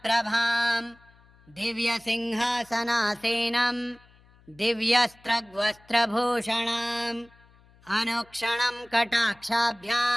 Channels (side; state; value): left; noise; hum, 28 dB below the sound